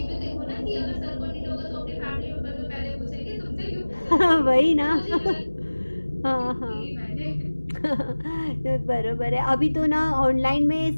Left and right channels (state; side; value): inverted; both; correlation -1.00